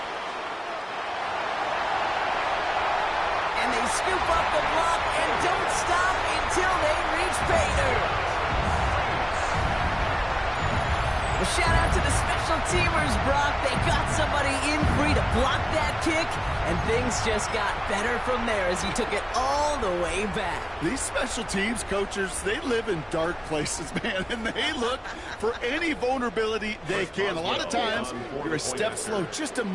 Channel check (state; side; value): identical; both; correlation 1.00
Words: And they scoop up the block and don't stop until they reach pay dirt. A shout out to the special teamers, Brock. They got somebody in free to block that kick, and things just got better from there as he took it all the way back. These special teams coaches, they live in dark places, man, and they look for any vulnerability they can. A lot of times, you're a step slow, just a